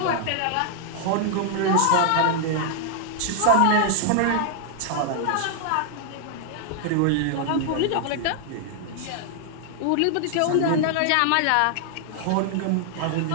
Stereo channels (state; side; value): different; both; correlation 0.00